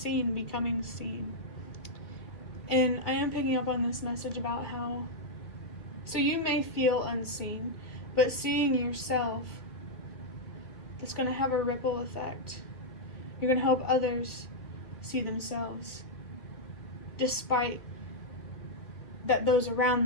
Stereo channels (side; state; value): right; late; 2.4 ms